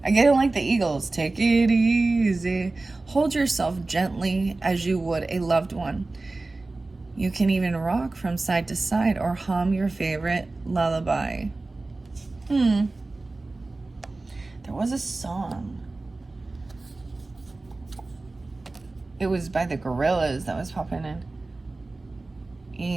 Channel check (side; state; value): left; quieter; 3.2 dB